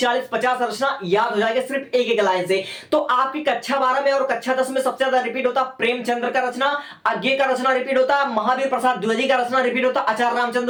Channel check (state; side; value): identical; both; correlation 1.00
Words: रचना याद हो जाएगा सिर्फ एक एक लाइन से। तो आपकी कक्षा 12 में और कक्षा 10 में सबसे ज्यादा रिपीट होता प्रेमचंद्र का रचना, आज्ञे का रचना रिपीट होता, महावीर प्रसाद द्विवेदी का रचना रिपीट होता, आचार्य